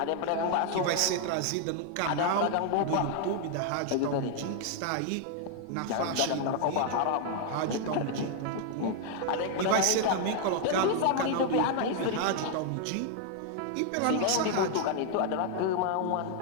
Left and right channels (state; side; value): different; both; correlation 0.00